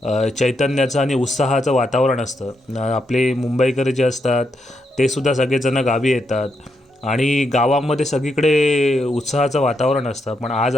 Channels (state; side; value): normal; both; correlation 0.81